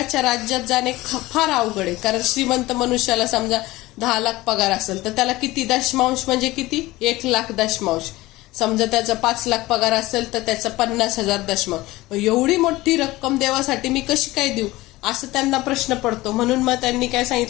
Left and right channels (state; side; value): quieter; right; 19.0 dB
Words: राज्यात जाणे फार अवघड आहे. कारण श्रीमंत मनुष्याला समजा 10 लाख पगार असेल तर त्याला किती दशमांश, म्हणजे किती 1 लाख दशमांश. समजा त्याचा 5 लाख पगार असेल तर त्याचा 50,000 दशमांश. एवढी मोठी रक्कम देवासाठी मी कशी काय देऊ, असं त्यांना प्रश्न पडतो. म्हणून मग त्यांनी काय